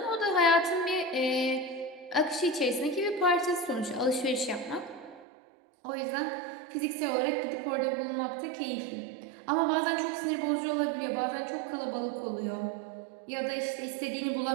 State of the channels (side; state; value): left; drops out; at 5.2 s